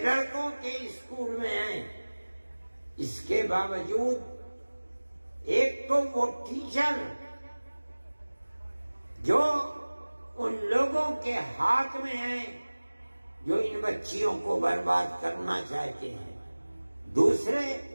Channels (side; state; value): both; inverted; correlation -1.00